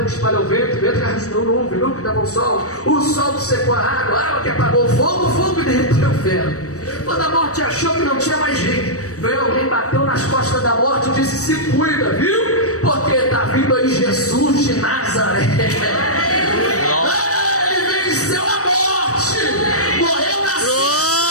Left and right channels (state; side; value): late; right; 0.66 ms